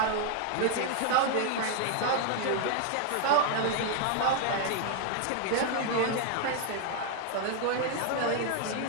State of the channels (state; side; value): different; both; correlation 0.00